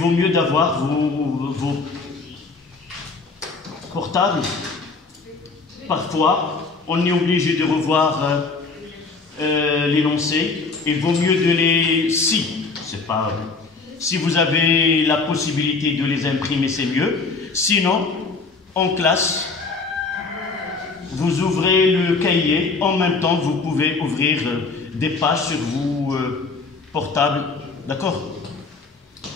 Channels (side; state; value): right; quieter; 4.2 dB